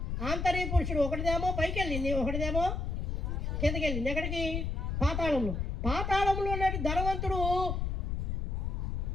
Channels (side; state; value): left; noise; rumble, 1 dB below the sound